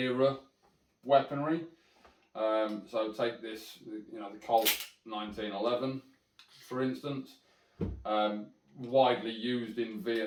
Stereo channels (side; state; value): both; identical; correlation 1.00